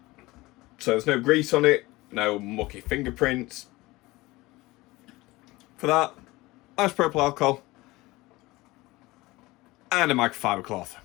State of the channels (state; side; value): quieter; right; 20.5 dB